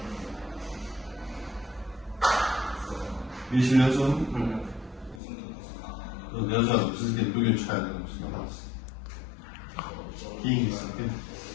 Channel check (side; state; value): right; drops out; at 5.2 s